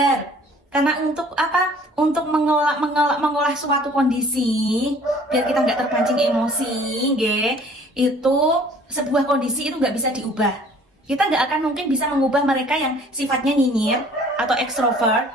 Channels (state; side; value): normal; both; correlation 0.53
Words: Karena untuk mengolah suatu kondisi biar kita nggak terpancing emosi, itu sebuah kondisi itu nggak bisa diubah. Kita nggak akan mungkin bisa mengubah mereka yang sifatnya nyinyir atau